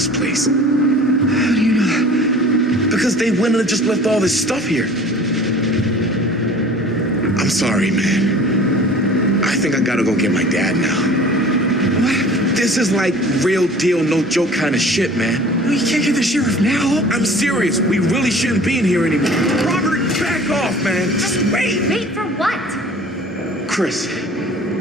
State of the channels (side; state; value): both; normal; correlation 0.45